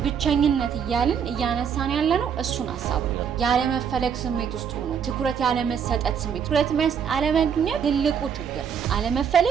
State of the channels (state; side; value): quieter; left; 7.4 dB